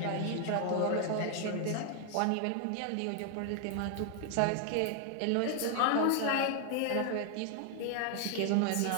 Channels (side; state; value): both; different; correlation 0.00